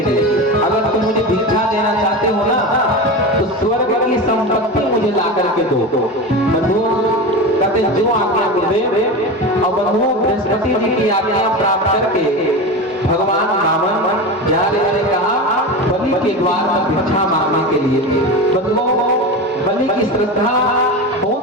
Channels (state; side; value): normal; both; correlation 0.24